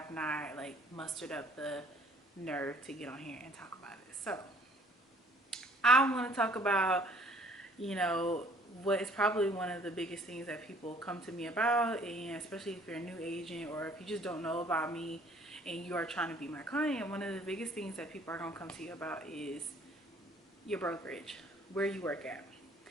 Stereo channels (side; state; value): both; normal; correlation 0.57